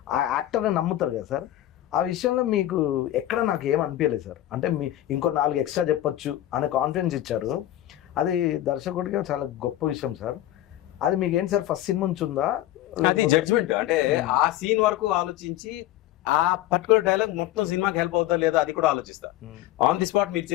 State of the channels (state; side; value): quieter; right; 14.1 dB